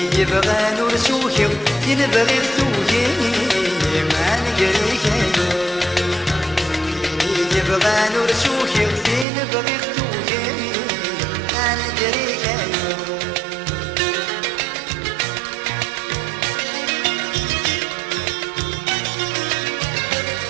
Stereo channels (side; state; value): left; drops out; at 9.2 s